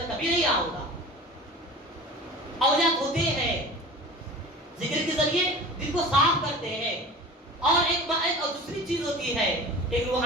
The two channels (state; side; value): normal; both; correlation 0.38